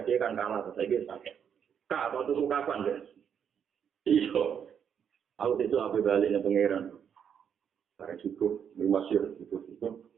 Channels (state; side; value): quieter; left; 8.0 dB